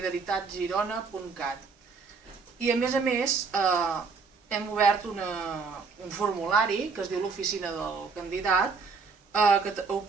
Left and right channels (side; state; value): left; quieter; 4.9 dB